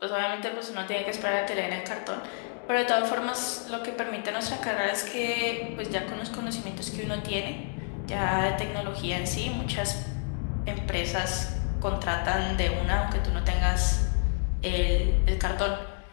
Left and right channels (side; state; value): right; silent; 59 dB below the other